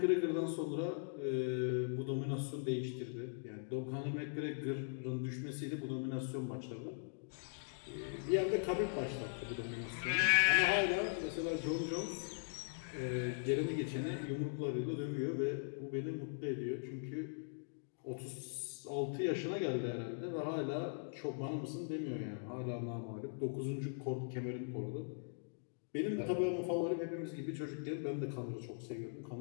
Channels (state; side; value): silent; right; digital silence